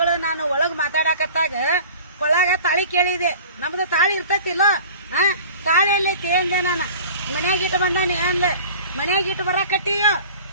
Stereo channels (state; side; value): inverted; both; correlation -0.43